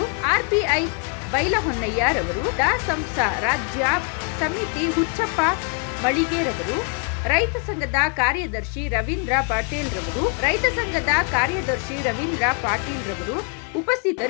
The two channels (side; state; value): right; quieter; 39.1 dB